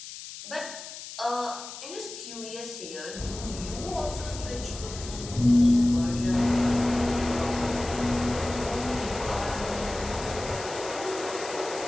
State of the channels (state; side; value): noise; left; hiss, 12 dB below the sound